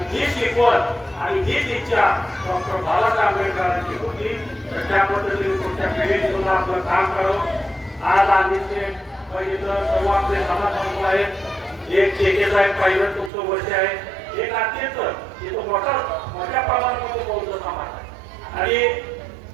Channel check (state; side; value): drops out; left; at 13.3 s